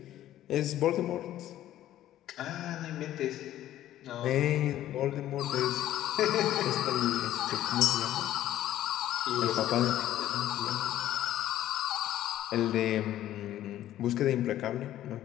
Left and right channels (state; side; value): quieter; right; 13.0 dB